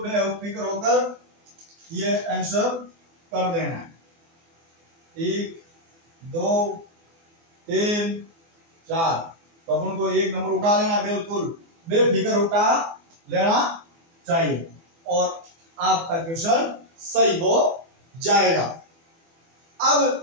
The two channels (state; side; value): late; left; 24 ms